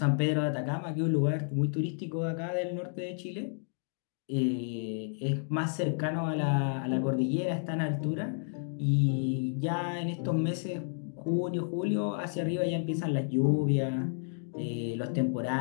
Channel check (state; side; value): silent; right; digital silence